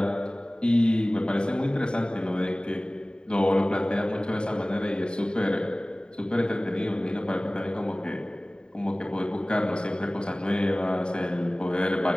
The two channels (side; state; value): right; late; 0.049 ms